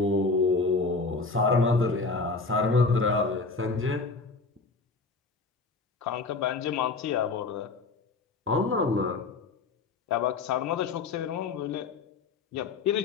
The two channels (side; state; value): right; quieter; 4.0 dB